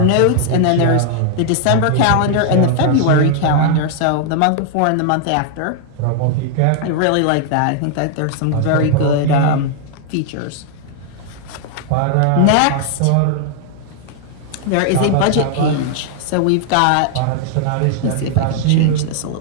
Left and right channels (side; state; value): both; different; correlation -0.01